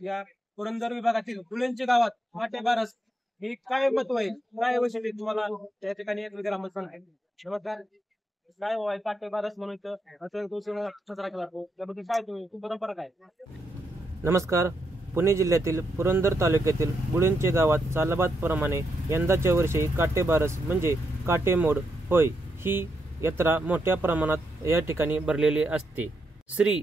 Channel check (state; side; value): normal; both; correlation 0.81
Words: या पुरंदर विभागातील गुळूंचे गावात काटे बारस हे काय महत्व आहे, काय वैशिष्ट्य तुम्हाला त्या ठिकाणी एक ग्रामस्थ सांगेल. नमस्कार, काय होय काटे बारस म्हणून इथं उत्सव साजरा केला जातो त्याबद्दल काय तुम्ही परंपरा काय? नमस्कार. पुणे जिल्ह्यातील पुरंदर तालुक्यातील गुळूंचे गावात सालाबादप्रमाणे यंदाच्या वर्षी काटेबारस म्हणजे काटेमोड होय ही यात्रा मोठ्या प्रमाणात या ठिकाणी भरलेली असते. श्री